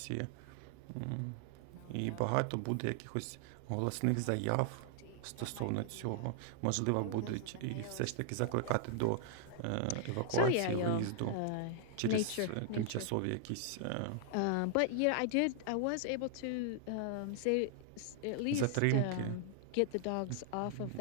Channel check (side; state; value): both; different; correlation 0.00